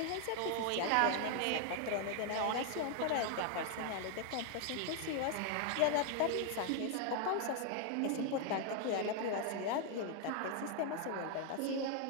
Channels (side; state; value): both; different; correlation 0.00